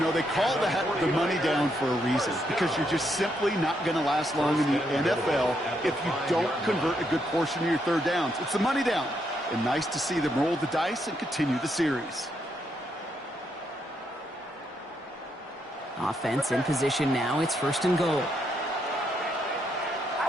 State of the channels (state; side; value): normal; both; correlation 0.77